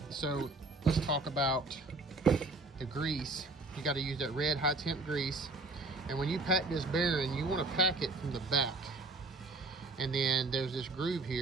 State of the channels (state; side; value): quieter; left; 3.1 dB